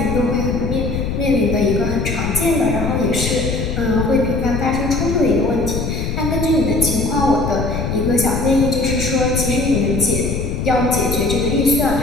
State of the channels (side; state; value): left; noise; rumble, 3 dB below the sound